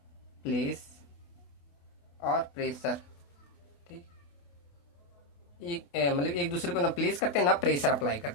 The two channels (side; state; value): right; late; 28 ms